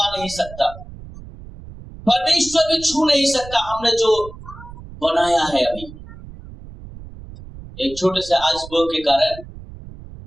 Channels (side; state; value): right; noise; rumble, 16 dB below the sound